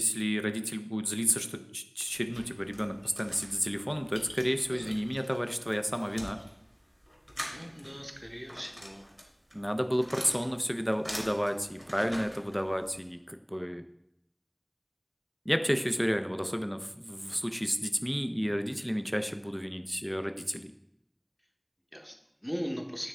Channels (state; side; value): identical; both; correlation 1.00